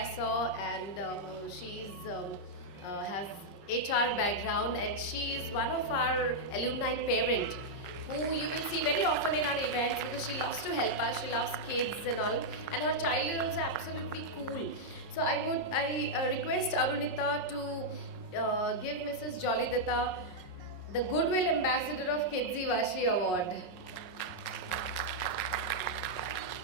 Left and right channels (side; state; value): right; late; 5.5 ms